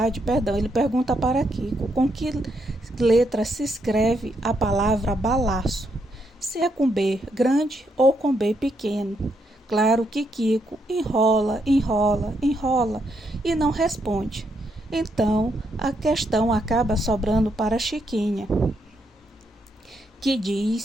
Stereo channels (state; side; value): normal; both; correlation 0.78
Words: ele pergunta para Kiko com que letra se escreve a palavra balaço, se é com B grande ou com B pequeno. Claro que Kiko enrola e não responde. Então, a questão acaba sobrando para Chiquinha, que